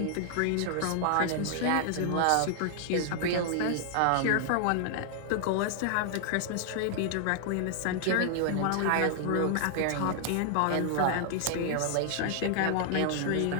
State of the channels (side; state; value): both; different; correlation 0.00